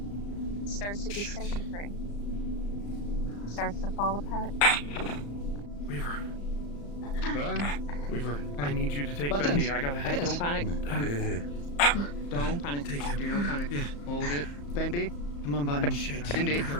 it starts to disintegrate. It starts to fall apart. Weaver. Weaver, I need you to take Buttons. Bendy. I gotta head. Don't panic. Don't panic. Take him. Do no panic. Yeah. Hold it. Bendy. Come on, Button. Bendy.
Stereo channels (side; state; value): right; late; 35 ms